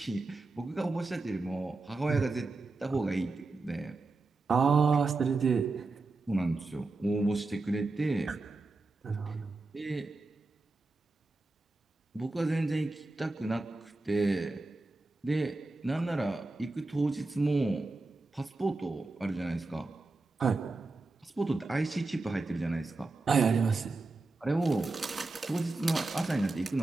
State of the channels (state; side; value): quieter; left; 3.4 dB